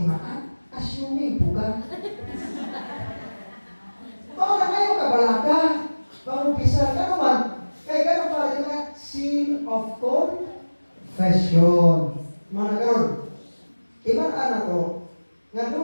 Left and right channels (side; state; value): both; inverted; correlation -1.00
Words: Assuming buka. Baka na ngayon kabalaka, pangumpisal ka naman, kaya gano'n pala yung seal of confession. Mga nagkaroon, ibang anak ko, nga